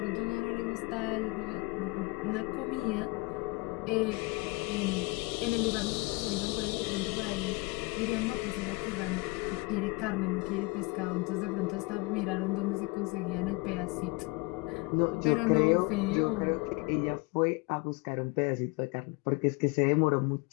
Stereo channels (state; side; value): quieter; right; 26.1 dB